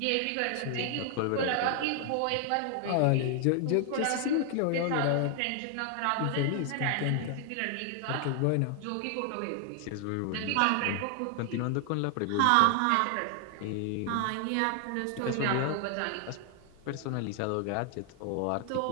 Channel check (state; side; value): different; both; correlation 0.00